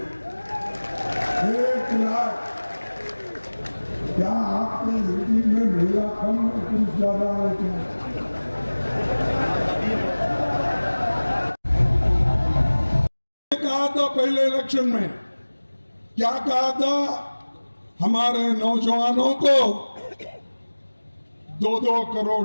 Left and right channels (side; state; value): both; inverted; correlation -1.00